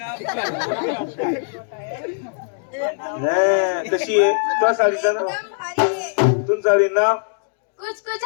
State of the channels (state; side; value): silent; right; digital silence